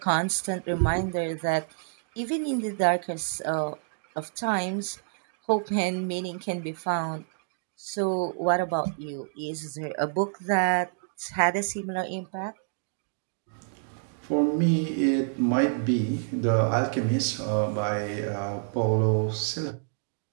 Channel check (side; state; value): left; silent; digital silence